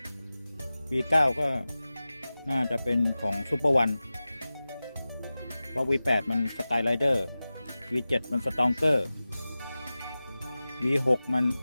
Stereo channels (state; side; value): inverted; both; correlation -0.96